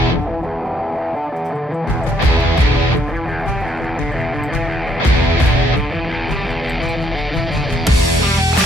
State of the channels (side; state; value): both; normal; correlation 0.70